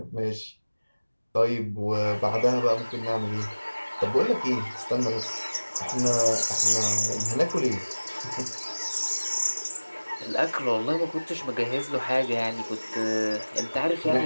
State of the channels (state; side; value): inverted; both; correlation -1.00